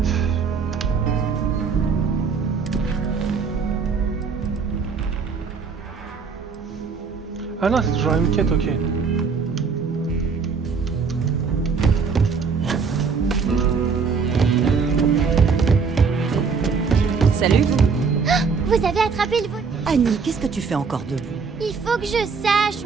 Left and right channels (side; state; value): left; quieter; 5.3 dB